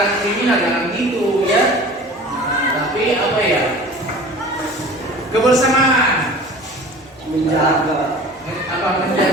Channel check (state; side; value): normal; both; correlation 0.42